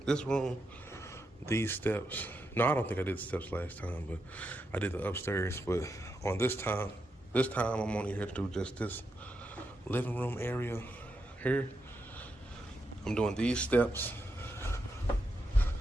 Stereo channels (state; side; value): normal; both; correlation 0.84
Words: this room, these steps. No, I don't think I did the steps last time, but I did the upstairs. But on this time I'm only here to do just this living room area here. I'm doing these steps.